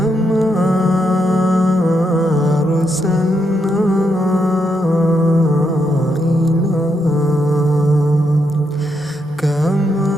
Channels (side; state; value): both; normal; correlation 0.80